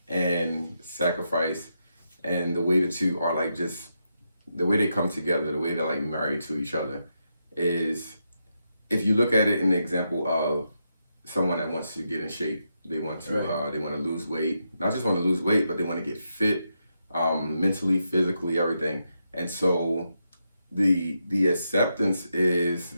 and sacrifice, and the way the two are like just the way they come together, the way they're like married to each other, is if you look at it in the example of someone that wants to get in shape, they want to they want to lose weight, not just want to lose weight, but they want to get fit, mentally, physically, everything. And so the acceptance is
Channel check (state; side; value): inverted; both; correlation -0.84